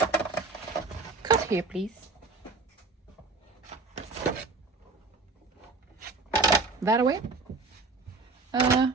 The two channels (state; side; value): quieter; left; 3.8 dB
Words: Cut here, please. That away?